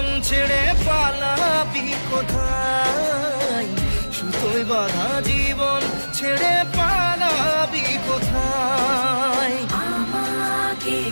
ছেড়ে পালাবি কোথায়? সুতোয় বাঁধা জীবন ছেড়ে পালাবি কোথায়? আমাকে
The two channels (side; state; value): both; inverted; correlation -1.00